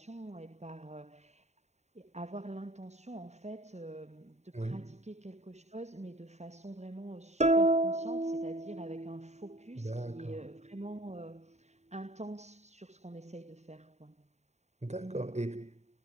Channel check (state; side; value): late; left; 0.32 ms